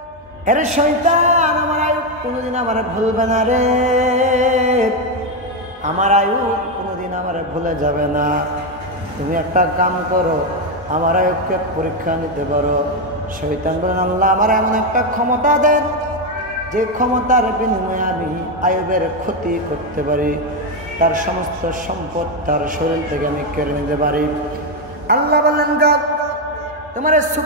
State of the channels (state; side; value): normal; both; correlation 0.06